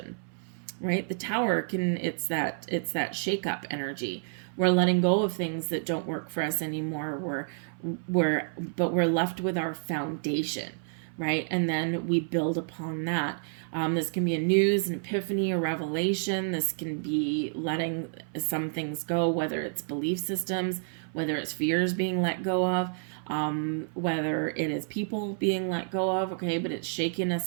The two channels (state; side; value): silent; left; 57 dB below the other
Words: right? The Tower it's that shake up energy. We're letting go of things that don't work for us anymore. But we're left with our foundation, right? And then we build upon that. This can be a news, an epiphany, a revelation. This can be letting some things go, whether it's belief systems, whether it's fears being let go of, whether it is people being let go of, okay? But it's shaking